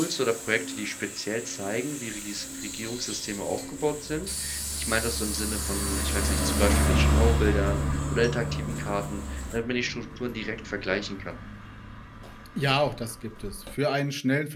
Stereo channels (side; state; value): both; identical; correlation 1.00